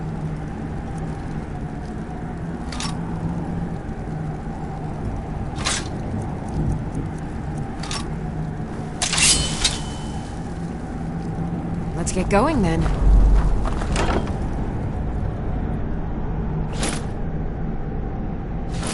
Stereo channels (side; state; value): both; identical; correlation 1.00